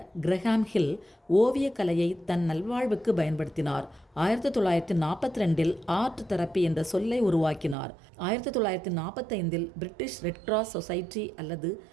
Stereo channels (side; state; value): left; drops out; at 7.8 s